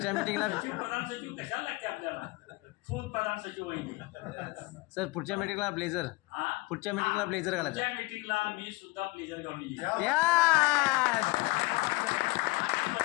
मीटिंगला सचिव प्रधान सचिव कशाला लागते आपल्याला? फुल प्रधान सचिव वहिनी सर पुढच्या मीटिंगला ब्लेझर पुढच्या मीटिंगला ब्लेझर घालायचं. पुढच्या मीटिंगला मी सुद्धा ब्लेझर घालून येईन.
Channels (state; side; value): quieter; right; 22.9 dB